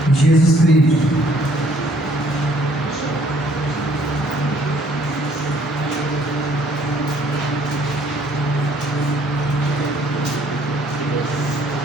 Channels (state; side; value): normal; both; correlation 0.62